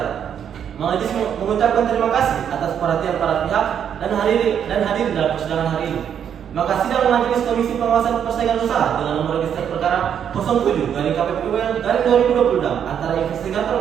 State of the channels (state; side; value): quieter; left; 8.6 dB